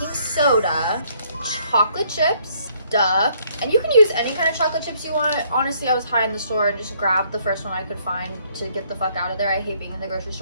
soda, chocolate chips, duh. And you can use any kind of chocolate chips you want. Honestly, I was high in the store and just grabbed the first one I could find to get the fuck out of there. I hate being in the grocery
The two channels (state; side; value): inverted; both; correlation -0.67